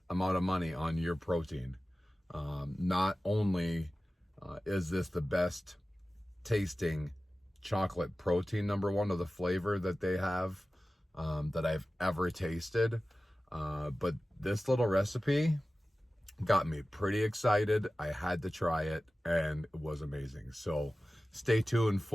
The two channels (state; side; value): normal; both; correlation 0.96